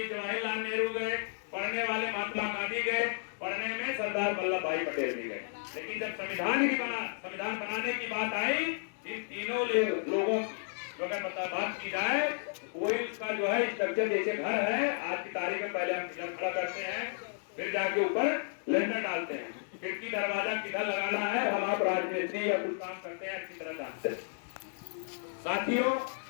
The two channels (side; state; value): right; silent; digital silence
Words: जवाहरलाल नेहरू गए, पढ़ने वाले महात्मा गांधी गए, पढ़ने में सरदार वल्लभ भाई पटेल भी गए। लेकिन जब संविधान बनाने की बात आई, इन तीनों लोगों की अगर बात की जाए, कोई उसका जो है स्ट्रक्चर जैसे घर है, आज की तारीख में पहले हम पिलर खड़ा करते हैं, फिर जाके ऊपर लेंटर डालते हैं, खिड़की दरवाजा किधर लगाना है, हम आप राजमिस्त्री या कुछ काम करते हैं, अच्छी तरह जानते हैं। साथियों,